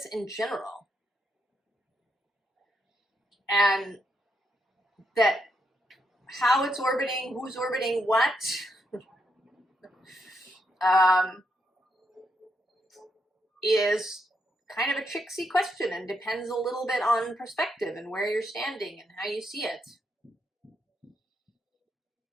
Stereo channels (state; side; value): normal; both; correlation 0.79